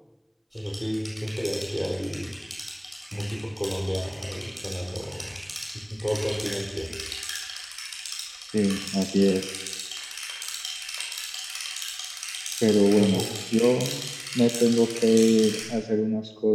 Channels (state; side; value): identical; both; correlation 1.00